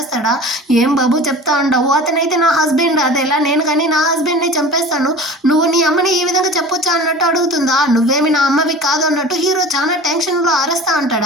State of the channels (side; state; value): both; normal; correlation 0.39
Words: ఏం బాబు చెప్తా ఉండవు, అతనైతే నా హస్బెండ్, అదేలా నేను కానీ నా హస్బెండ్ ని చంపేస్తాను, నువ్వు నీ అమ్మని ఈ విధంగా చెప్పొచ్చా అన్నట్టు అడుగుతుందా. నువ్వేమి నా అమ్మవి కాదు అన్నట్టు హీరో చాలా టెన్షన్ లో అరుస్తా